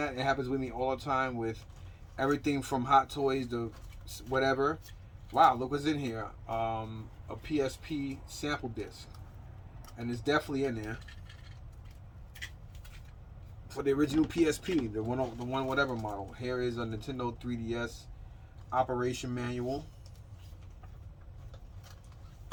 It happens with me all the time with everything from Hot Toys to whatever. Wow, look what's in here. A PSP sample disc. And it's definitely in there. for the original PSP, the one whatever model. Here is a Nintendo 3DS operation manual.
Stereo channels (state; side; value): identical; both; correlation 1.00